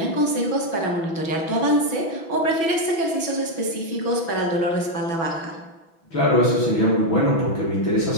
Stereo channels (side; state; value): right; late; 6.1 ms